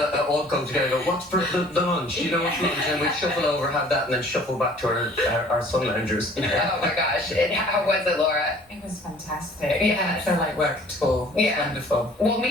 all go together and go, what's for the lunch? What's lunch? And we'd shuffle over, have that, and then shuffle back to our sun loungers. Oh my gosh. How was it, Laura? It was fantastic. Yes. I didn't feel like work at all. It was wonderful. Well,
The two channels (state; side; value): normal; both; correlation 0.52